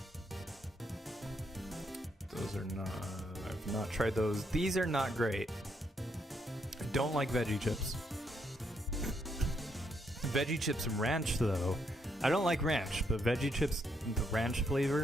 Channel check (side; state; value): both; normal; correlation 0.75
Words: Those are not, I've not tried those. These are not great. I don't like veggie chips. Veggie chips and ranch though. I don't like ranch, but veggie chips, the ranch